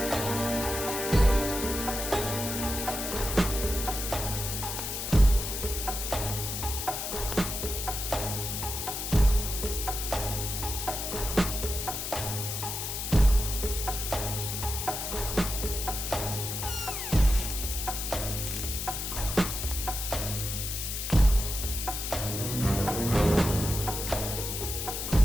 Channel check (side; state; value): left; noise; hiss, 4 dB below the sound